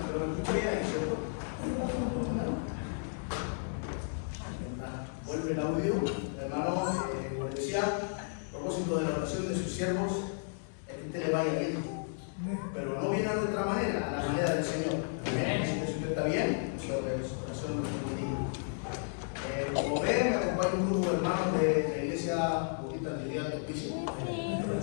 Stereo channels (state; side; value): silent; right; digital silence